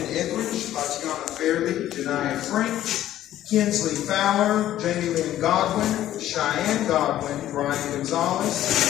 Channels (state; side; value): quieter; right; 12.9 dB